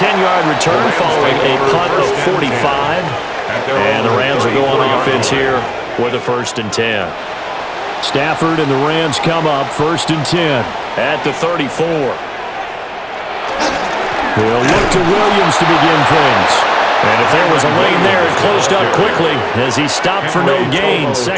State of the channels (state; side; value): identical; both; correlation 1.00